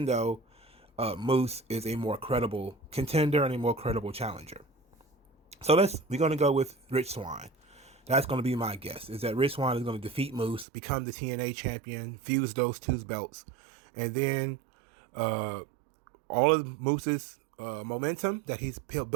though Moose is a more credible contender and a more credible challenger. So we're going to go with Rich Swann. That's going to be my guess, is that Rich Swann is going to defeat Moose, become the TNA champion, fuse those two belts, and then all of Moose's momentum that he's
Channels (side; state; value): left; drops out; at 10.7 s